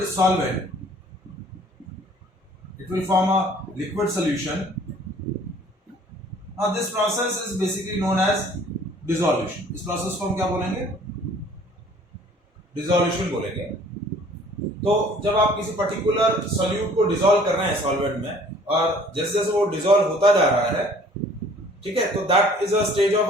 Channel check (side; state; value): both; normal; correlation 0.54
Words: solvent, it will form a liquid solution. Now this process is basically known as dissolution. इस process को हम क्या बोलेंगे? Dissolution बोलेंगे. तो जब आप किसी पर्टिकुलर solute को dissolve कर रहे हैं solvent में और जैसे जैसे वो dissolve होता जा रहा है, ठीक है, तो that is a stage